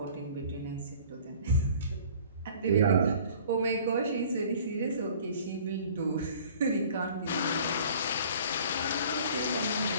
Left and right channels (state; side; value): inverted; both; correlation -0.50